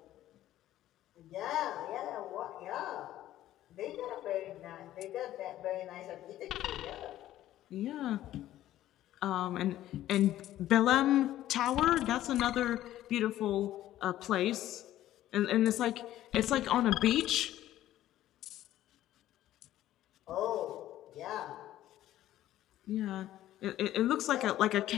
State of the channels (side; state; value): right; quieter; 13.5 dB